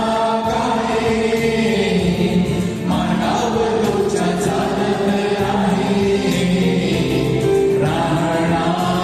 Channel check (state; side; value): identical; both; correlation 1.00